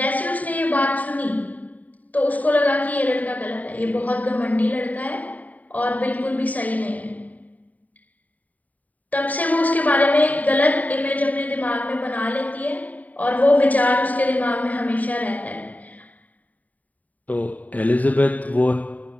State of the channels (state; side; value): late; right; 0.073 ms